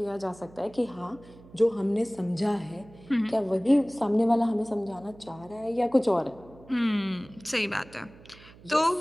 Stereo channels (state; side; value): noise; right; hum, 22 dB below the sound